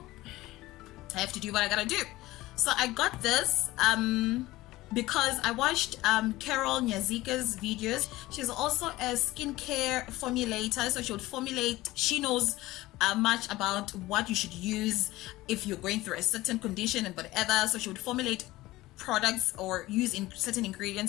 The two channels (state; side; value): quieter; right; 18.0 dB